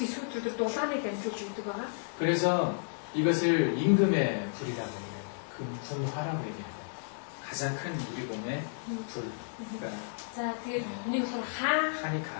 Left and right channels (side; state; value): right; silent; digital silence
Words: дулааныг дамжуулж өгдөг байгаа. 그래서 이것을 임금의 불이라고 얘기해요. 금풍화라고 얘기해요. 가장 큰 우리 몸의 불. 그러니까 За тэгээд нэг болохоор 하니까